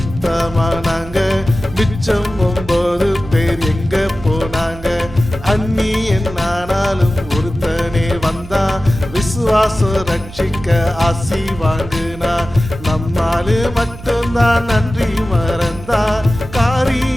மிச்சம் 9 பேர் எங்க போனாங்க? அந்நியன் ஆனாலும் ஒருத்தனே வந்தா விசுவாசம் ரட்சிக்க ஆசி வாங்குனா. நம்மாலு மட்டும்தான் நன்றி மறந்தா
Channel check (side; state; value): right; noise; hum, 16 dB below the sound